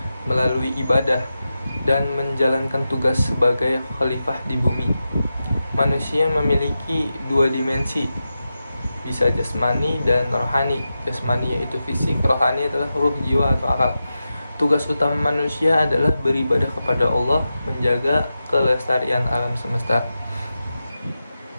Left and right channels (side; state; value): both; inverted; correlation -0.91